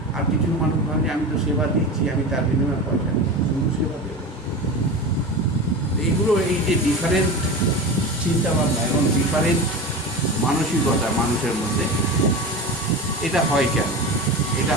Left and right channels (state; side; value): normal; both; correlation 0.27